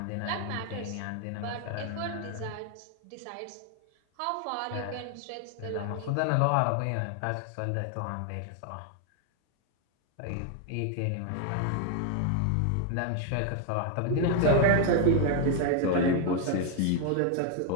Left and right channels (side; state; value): both; different; correlation 0.00